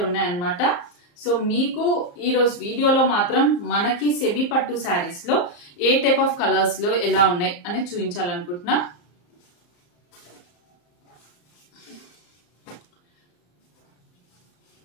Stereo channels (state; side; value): late; right; 34 ms